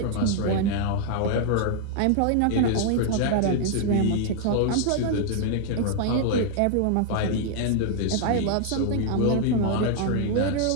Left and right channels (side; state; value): both; different; correlation 0.00